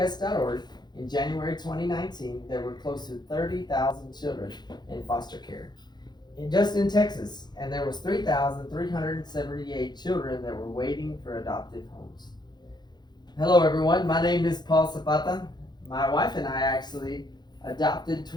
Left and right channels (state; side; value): late; right; 0.21 ms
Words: in January 2019, there were close to 30,000 children in foster care, just in Texas, and there was 3,378 children that were waiting for adoptive homes. Hello, everyone. My name is Paul Zapata. My wife and I actually adopted